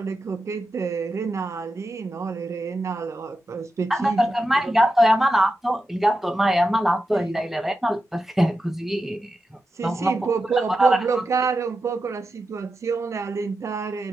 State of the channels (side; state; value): both; normal; correlation 0.89